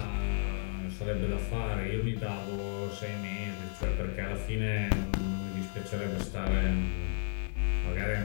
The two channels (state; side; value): silent; right; digital silence